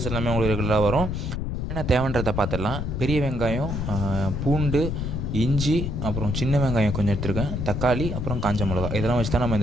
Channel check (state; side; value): noise; left; rumble, 3 dB below the sound